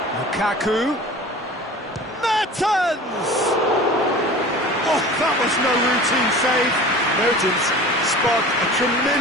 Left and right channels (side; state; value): both; normal; correlation 0.39